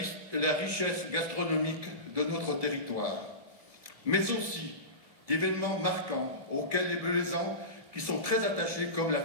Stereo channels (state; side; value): late; left; 1.7 ms